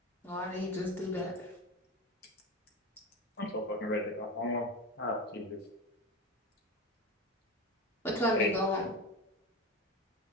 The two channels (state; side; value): normal; both; correlation 0.23